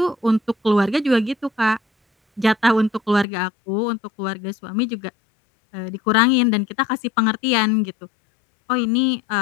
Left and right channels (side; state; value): right; drops out; at 3.2 s